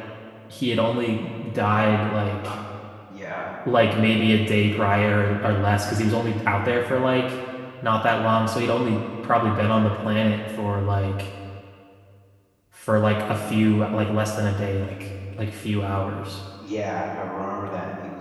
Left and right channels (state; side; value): identical; both; correlation 1.00